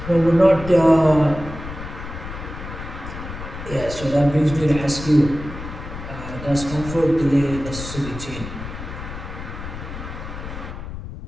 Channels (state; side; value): noise; left; rumble, 10 dB below the sound